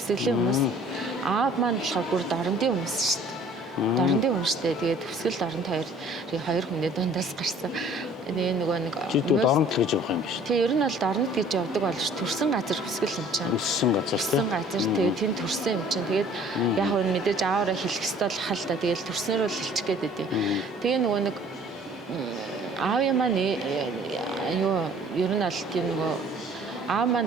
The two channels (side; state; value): both; normal; correlation 0.53